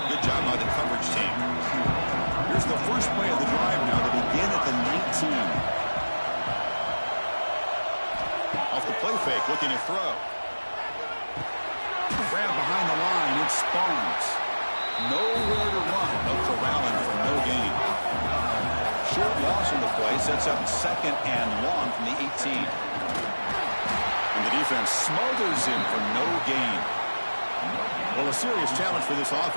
Good job by the coverage team. Here's the first play of the drive now to begin at the 19. Off the play fake, looking to throw. Grab behind the line, it's Barnes. Nowhere to run, but corralling for no gain. Short loss on the play, sets up 2nd and long from the 18. And the defense smothers him for no gain. Well, a serious challenge for this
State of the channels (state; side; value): inverted; both; correlation -1.00